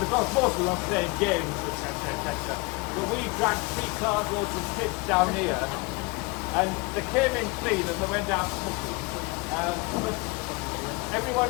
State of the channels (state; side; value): quieter; right; 26.5 dB